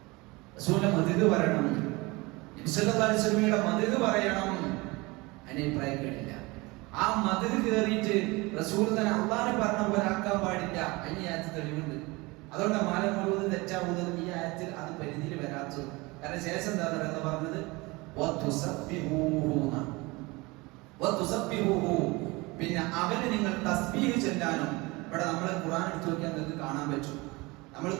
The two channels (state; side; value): quieter; left; 23.9 dB